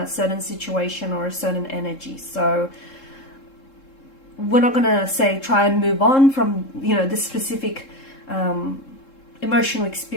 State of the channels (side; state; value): right; late; 3.7 ms